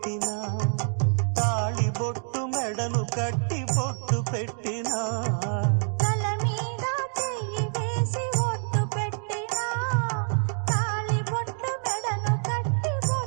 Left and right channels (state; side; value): silent; left; 60 dB below the other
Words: తాళి బొట్టు మెడను కట్టి బొట్టు పెట్టినా, తల మీద చెయ్యి వేసి బొట్టు పెట్టినా, తాళి బొట్టు మెడను కట్టి